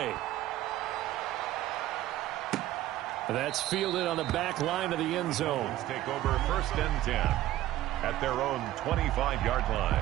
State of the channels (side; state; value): left; quieter; 14.5 dB